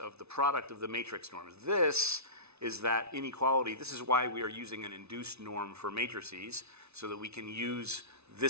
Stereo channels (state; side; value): late; left; 0.80 ms